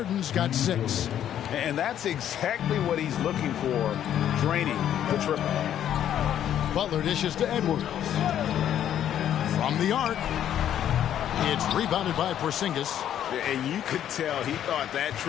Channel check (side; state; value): right; quieter; 10.5 dB